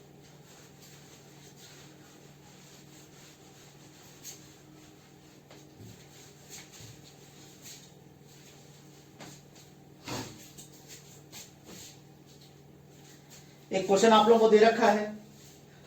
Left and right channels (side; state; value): both; identical; correlation 1.00